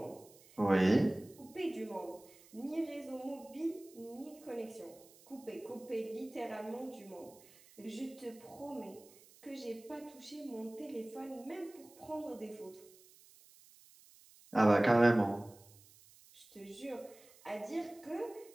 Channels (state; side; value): noise; right; hiss, 24 dB below the sound